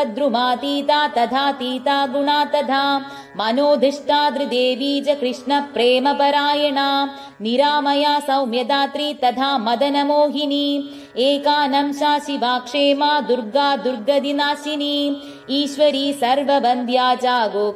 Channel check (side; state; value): both; identical; correlation 1.00